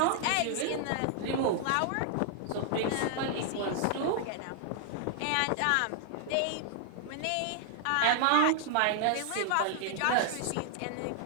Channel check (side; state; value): both; different; correlation 0.00